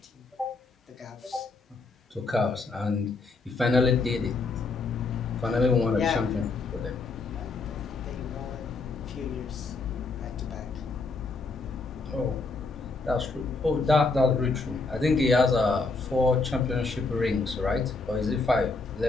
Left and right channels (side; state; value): right; quieter; 3.8 dB